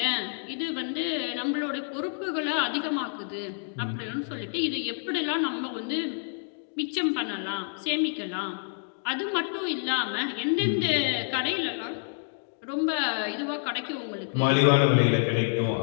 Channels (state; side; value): silent; right; 59 dB below the other